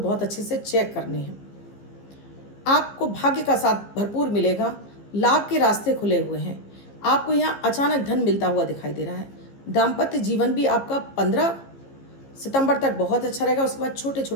अच्छे से चेक करने हैं। आपको भाग्य का साथ भरपूर मिलेगा, लाभ के रास्ते खुले हुए हैं। आपको यहाँ अचानक धन मिलता हुआ दिखाई दे रहा है। दाम्पत्य जीवन भी आपका 15 सितंबर तक बहुत अच्छा रहेगा। उसके बाद छोटे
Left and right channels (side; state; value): right; late; 15 ms